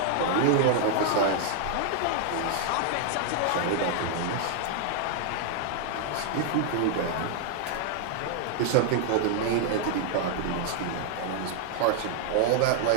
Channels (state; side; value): different; both; correlation 0.00